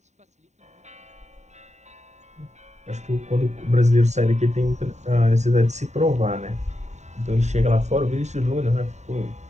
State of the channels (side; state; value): left; late; 0.34 ms